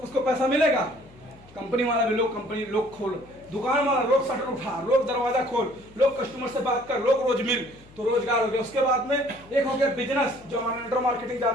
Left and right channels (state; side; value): noise; left; hum, 24 dB below the sound